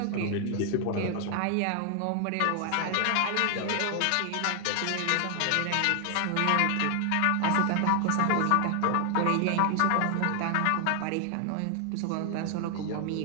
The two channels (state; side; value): different; both; correlation 0.00